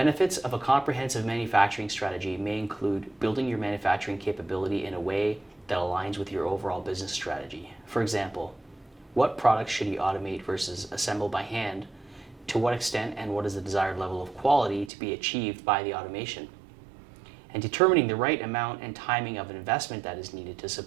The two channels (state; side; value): drops out; left; at 14.9 s